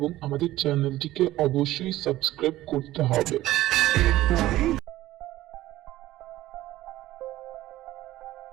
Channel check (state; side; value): quieter; left; 15.7 dB